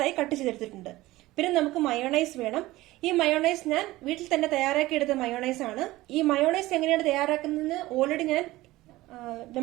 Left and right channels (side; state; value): left; quieter; 18.1 dB